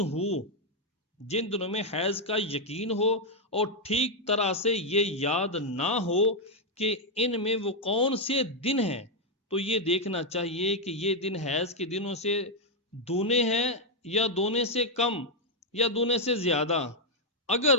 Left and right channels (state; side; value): normal; both; correlation 0.00